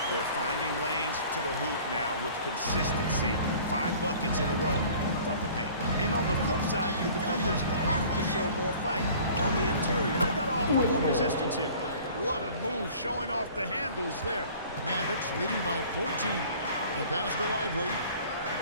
They're finding lanes to the hoop now with consistency. 5 buckets in a row from the paint. And on the flip side, the defenders have to show more fight on the interior. They've got to offer more resistance here. What a move, showing off the handles there. Mavericks leading by 14. The pass to Lively.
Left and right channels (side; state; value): both; inverted; correlation -0.48